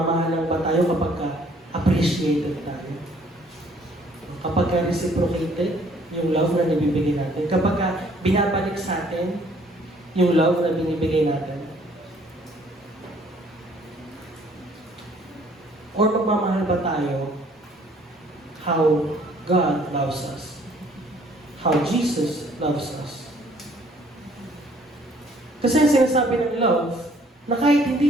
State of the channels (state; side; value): normal; both; correlation 0.60